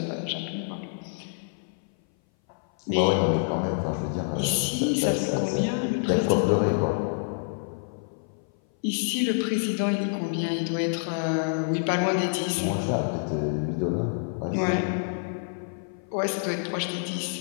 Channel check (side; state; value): right; silent; 57 dB below the other